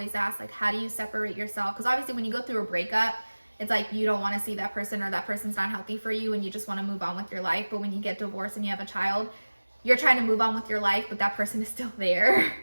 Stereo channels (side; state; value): both; inverted; correlation -1.00